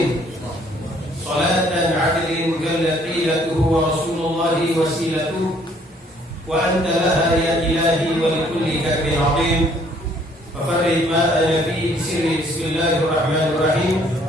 salatan 'adlin kallaqilatuhu wa rasulullahi wasilatuhu wa anta laha ya ilahi wa likulli kabir azim fafarrid ma ana fi sirri. Bismillahirrahmanirrahim.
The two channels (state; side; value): normal; both; correlation 0.62